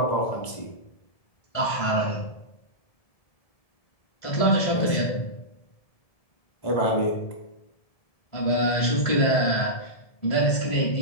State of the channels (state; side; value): late; right; 1.7 ms